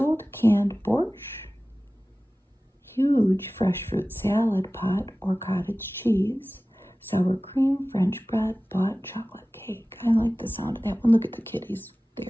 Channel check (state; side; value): normal; both; correlation 0.97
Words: canned borscht, huge fresh fruit salad pot or cottage cheese, sour cream, French bread, bought chocolate cake. I like the sound of that one. Look at the kitties